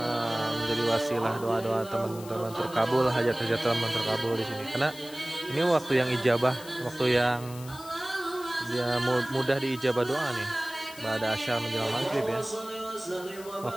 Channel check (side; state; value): left; noise; hiss, 17 dB below the sound